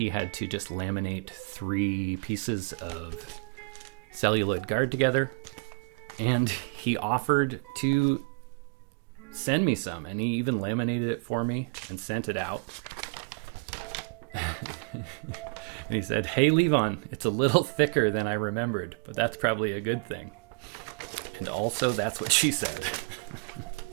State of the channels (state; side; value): quieter; left; 35.5 dB